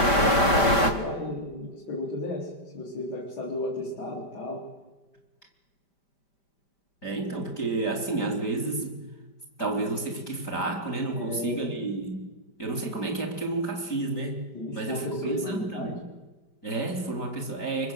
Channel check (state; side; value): late; right; 5.1 ms